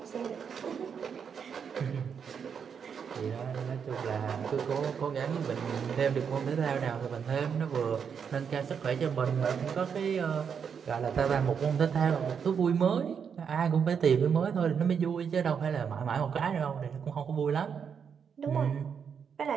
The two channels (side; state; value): left; quieter; 7.0 dB